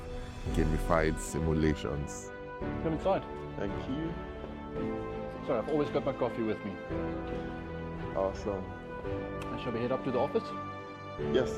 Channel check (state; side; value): identical; both; correlation 1.00